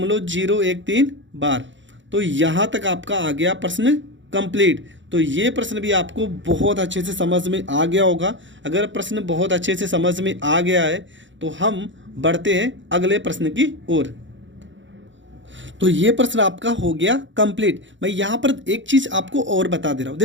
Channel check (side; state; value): left; late; 0.54 ms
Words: बार। तो यहाँ तक आपका आ गया प्रश्न कंप्लीट। तो ये प्रश्न भी आपको बहुत अच्छे से समझ में आ गया होगा। अगर प्रश्न बहुत अच्छे से समझ में आ गया है तो हम बढ़ते हैं अगले प्रश्न की ओर। तो ये प्रश्न आपका हो गया कंप्लीट। मैं यहाँ पर एक चीज़ आपको और बता दे रहा हूँ,